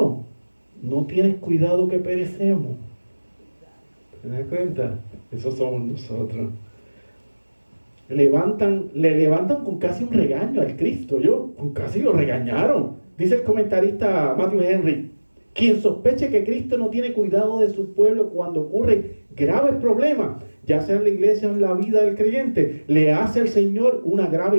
No tienes cuidado que perecemos. ¿Te das cuenta? Eso somos nosotros. Le levantan con casi un regaño al Cristo, con casi lo regañaron. Dice el comentarista Matthew Henry, quien sospeche que Cristo no tiene cuidado de su pueblo cuando ocurren graves problemas, ya sea en la iglesia o en la vida del creyente, le hace al Señor una grave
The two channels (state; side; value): inverted; both; correlation -1.00